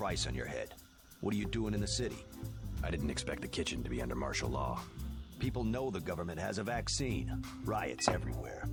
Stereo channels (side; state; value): both; identical; correlation 1.00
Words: on your head. What are you doing in the city? I didn't expect the kitchen to be under martial law. People know the government has a vaccine. Riots everywhere.